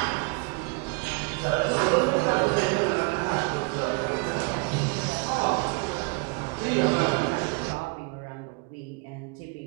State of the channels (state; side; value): quieter; left; 32.2 dB